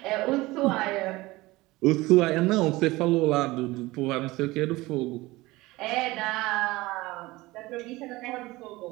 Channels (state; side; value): quieter; left; 20.2 dB